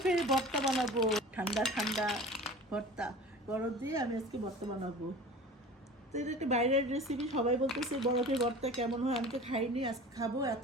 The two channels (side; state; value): both; normal; correlation 0.39